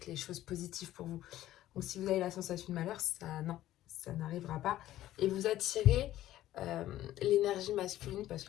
les choses positives pour vous. Donc si vous avez la sensation de malheur, ça n'arrivera pas. Et vous attirez l'énergie masculine parce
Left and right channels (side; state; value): right; quieter; 13.9 dB